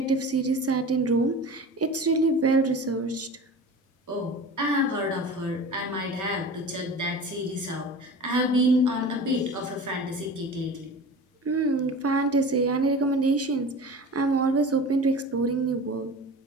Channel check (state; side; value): normal; both; correlation 0.35